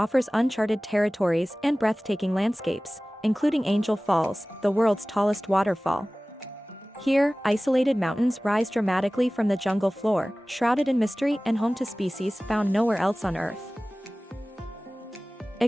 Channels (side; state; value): both; normal; correlation 0.98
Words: uncharted territories and breathtaking landscapes, including Angel Falls, the world's tallest waterfall. Here, isolated mountains rise dramatically from the jungle floor, shrouded in mystery and home to species found nowhere else on Earth.